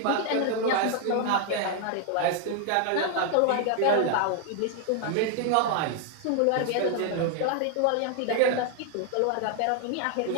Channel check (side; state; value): both; different; correlation 0.00